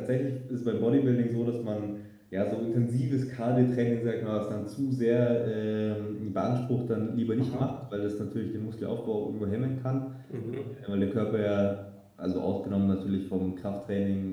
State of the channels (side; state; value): both; identical; correlation 1.00